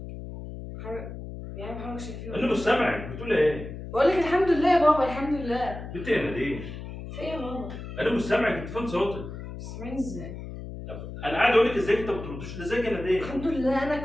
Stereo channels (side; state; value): left; noise; hum, 10 dB below the sound